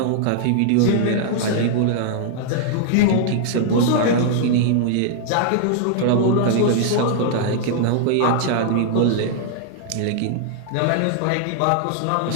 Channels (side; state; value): both; different; correlation -0.01